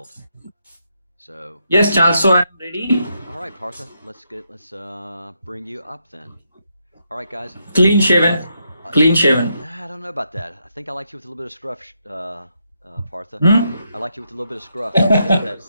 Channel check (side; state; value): both; inverted; correlation -0.80